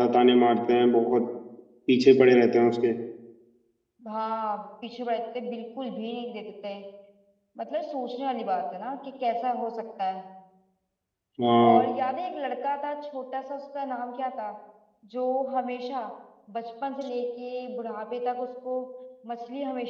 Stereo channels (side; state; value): both; identical; correlation 1.00